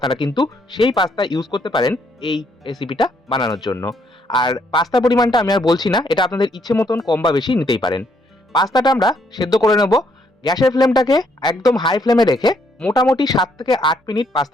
কিন্তু সেই পাস্তা ইউজ করতে পারেন এই রেসিপিটা বানানোর জন্য। আর পাস্তা পরিমাণটা আমি আর বলছি না, এটা আপনাদের ইচ্ছে মতন কম বা বেশি নিতেই পারেন। পাস্তাটা আমরা সেদ্ধ করে নেব। গ্যাসের ফ্লেমটাকে একদম হাই ফ্লেমে রেখে মোটামুটি 7 থেকে 8 মিনিট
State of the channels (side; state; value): both; normal; correlation 0.71